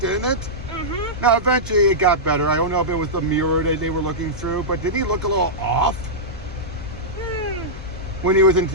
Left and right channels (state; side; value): noise; left; hum, 14 dB below the sound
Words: isn't it? Mm-hmm. Now, eventually it got better. I don't know if it was the mirror that they were looking through, but didn't he look a little off? When he was